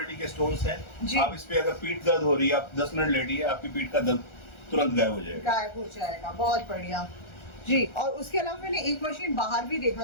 के स्टोन्स हैं। जी। आप इस पे अगर पीठ दर्द हो रही है, आप 10 मिनट लेटिए, आपकी पीठ का दर्द तुरंत गायब हो जाएगा। गायब हो जाएगा, बहुत बढ़िया जी। और उसके अलावा मैंने एक मशीन बाहर भी देखा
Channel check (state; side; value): late; right; 1.4 ms